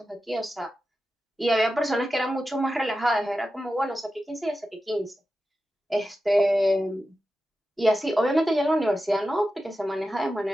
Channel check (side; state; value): both; normal; correlation 0.92